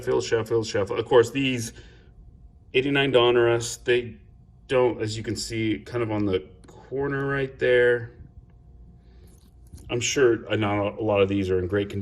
course, these 89 Donruss, they don't, as you can see, kind of on the corner right there. I'm sure not a lot of these are in great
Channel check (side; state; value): both; identical; correlation 1.00